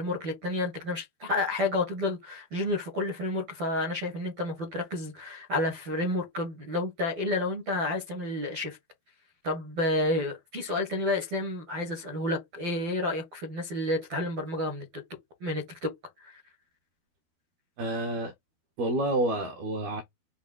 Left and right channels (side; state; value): left; late; 12 ms